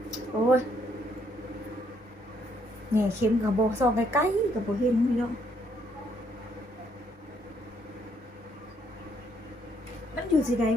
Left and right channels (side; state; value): both; normal; correlation 0.70